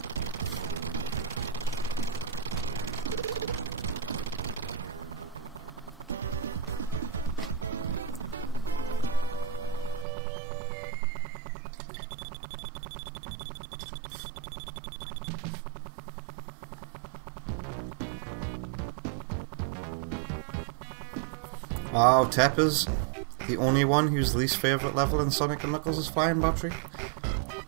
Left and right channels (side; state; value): left; drops out; at 10.1 s